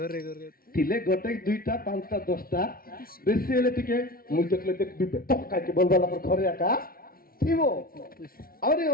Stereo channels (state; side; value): late; right; 0.43 ms